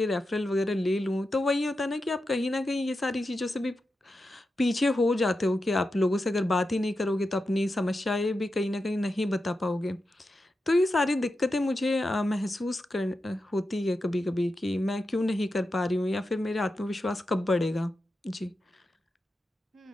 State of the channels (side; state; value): both; normal; correlation 0.89